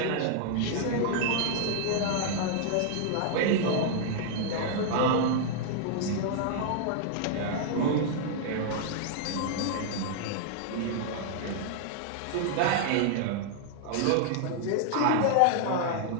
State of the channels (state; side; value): different; both; correlation -0.01